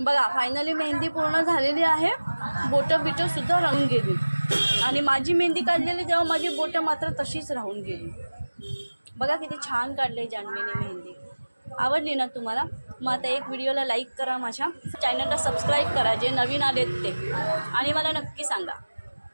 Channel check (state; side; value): inverted; both; correlation -1.00